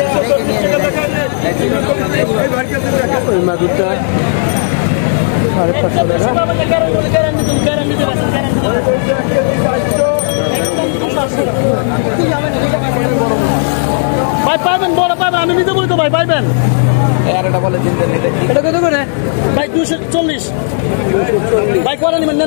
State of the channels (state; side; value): silent; right; digital silence